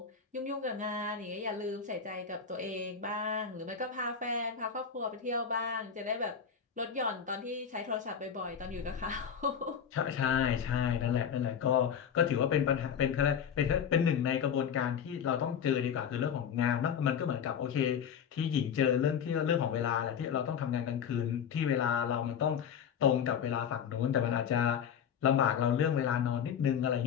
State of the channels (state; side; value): quieter; right; 7.6 dB